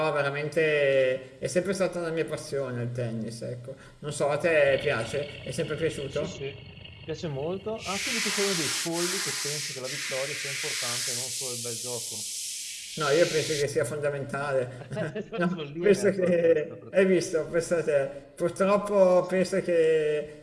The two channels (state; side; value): identical; both; correlation 1.00